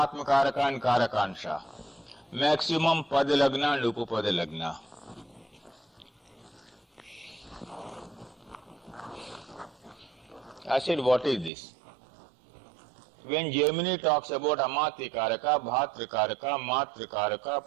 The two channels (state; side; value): drops out; left; at 11.5 s